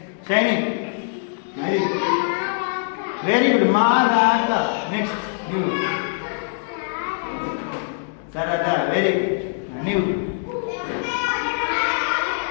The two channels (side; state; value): right; silent; digital silence